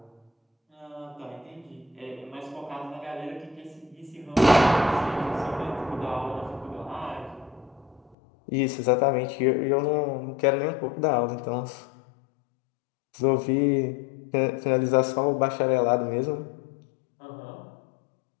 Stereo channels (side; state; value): right; drops out; at 8.2 s